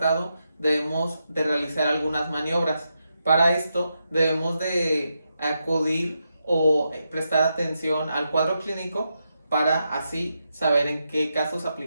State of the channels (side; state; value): both; inverted; correlation -0.85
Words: debemos de realizar algunas maniobras. Para esto debemos de acudir o prestar atención al cuadro clínico para así saber en qué casos